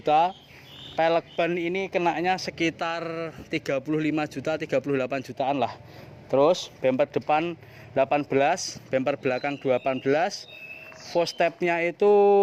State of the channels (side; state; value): both; identical; correlation 1.00